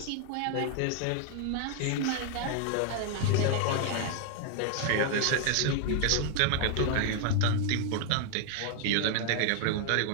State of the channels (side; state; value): both; different; correlation 0.00